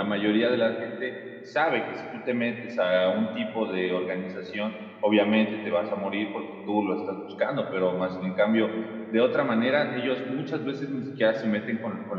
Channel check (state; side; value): identical; both; correlation 1.00